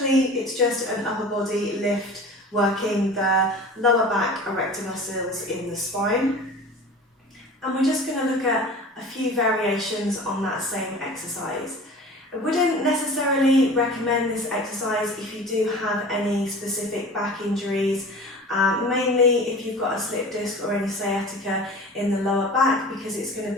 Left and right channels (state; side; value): normal; both; correlation 0.39